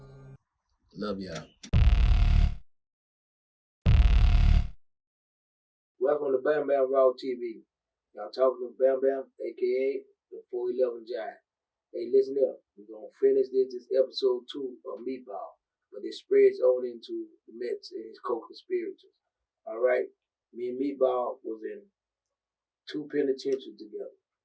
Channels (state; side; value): identical; both; correlation 1.00